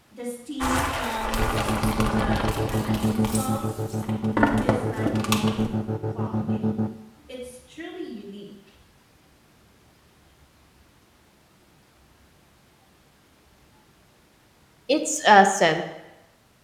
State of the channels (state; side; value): identical; both; correlation 1.00